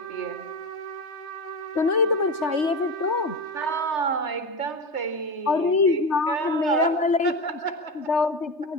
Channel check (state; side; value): late; right; 3.3 ms